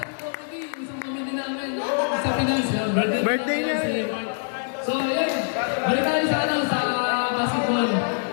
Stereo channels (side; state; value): right; silent; digital silence